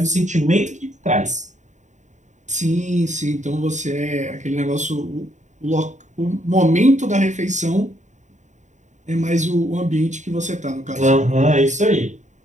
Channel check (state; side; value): late; left; 0.35 ms